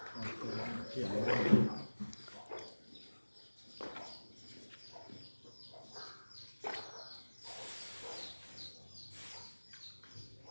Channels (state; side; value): inverted; both; correlation -1.00